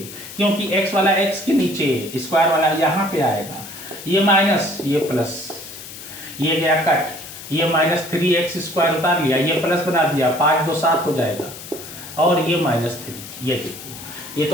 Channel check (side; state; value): left; noise; hiss, 13 dB below the sound